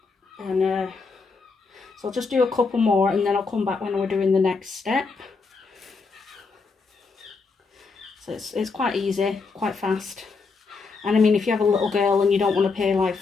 And so I'll just do a couple more and then I'll come back when we're doing the next step. So it's quite easy, quite fast. And I mean, if you have a little girl and you don't want to pay like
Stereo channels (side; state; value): right; quieter; 4.5 dB